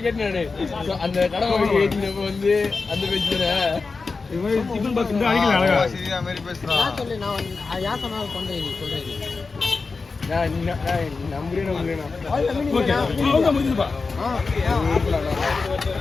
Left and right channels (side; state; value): right; quieter; 4.3 dB